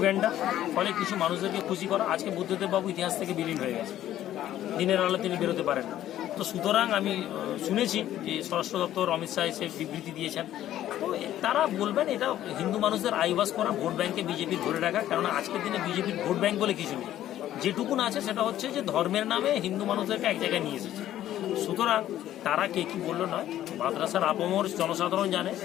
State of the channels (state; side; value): quieter; right; 12.5 dB